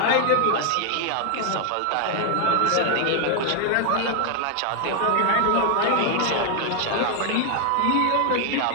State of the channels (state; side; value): different; both; correlation 0.01